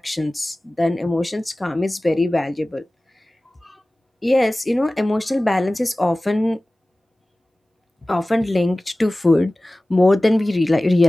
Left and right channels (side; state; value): both; normal; correlation 0.97